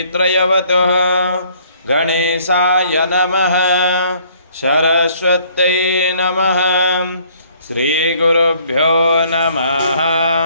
गणेशाय नमः सरस्वत्यै नमः श्रीगुरुभ्यो नमः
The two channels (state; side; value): inverted; both; correlation -0.61